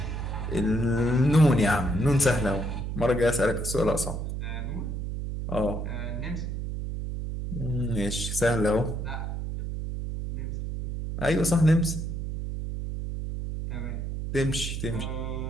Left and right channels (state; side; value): noise; right; hum, 4 dB below the sound